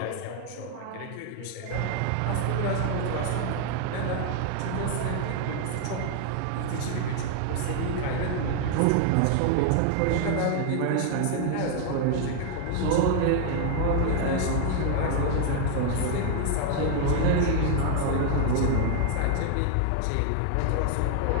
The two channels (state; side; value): different; both; correlation 0.00